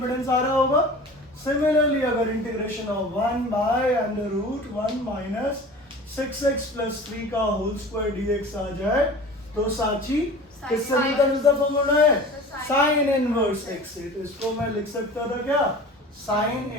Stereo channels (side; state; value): both; normal; correlation 0.39